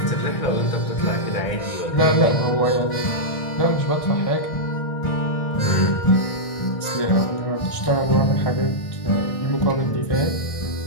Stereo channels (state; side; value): late; right; 1.6 ms